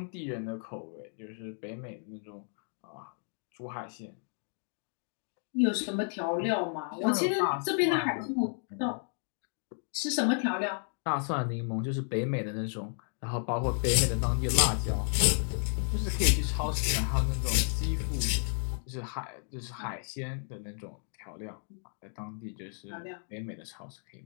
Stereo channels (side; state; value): right; silent; 56 dB below the other